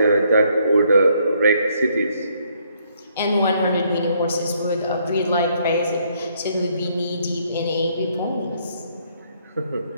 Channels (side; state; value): both; inverted; correlation -0.69